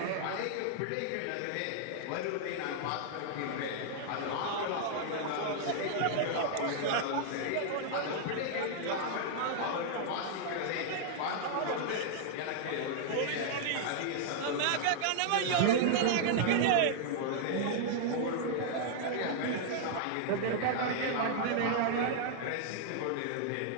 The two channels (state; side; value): different; both; correlation -0.01